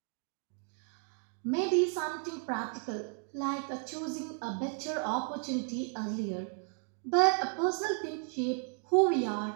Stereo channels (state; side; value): quieter; left; 39.0 dB